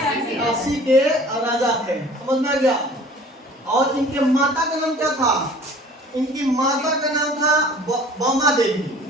काशी के राजा थे, समझ में आ गया। और इनके माता का नाम क्या था, इनकी माता का नाम था वामा देवी।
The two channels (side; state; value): both; normal; correlation 0.48